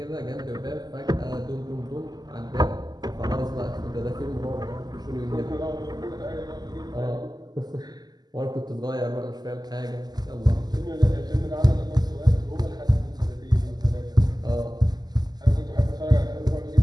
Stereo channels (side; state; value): left; late; 0.20 ms